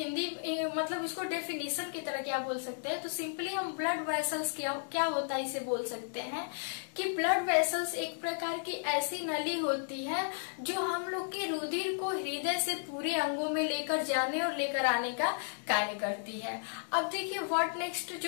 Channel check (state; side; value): silent; right; digital silence